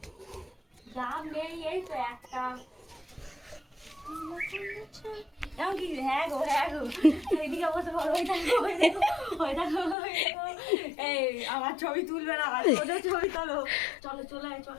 ডাব নেই এই তো একটা কি হ্যাঁ গো এদিকে বসে বড় ওই দেখো এই আমার ছবি তুলবে না ওদের ছবি তোলো চলো চলো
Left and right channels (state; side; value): drops out; right; at 10.0 s